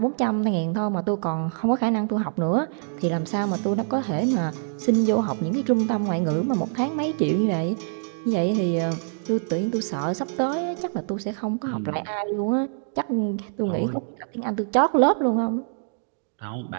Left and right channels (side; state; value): left; silent; digital silence